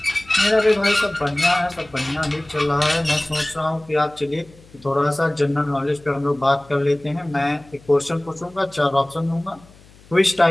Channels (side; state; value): left; noise; hum, 26 dB below the sound